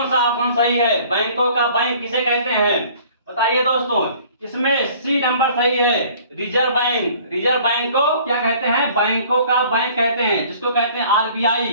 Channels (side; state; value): both; inverted; correlation -0.52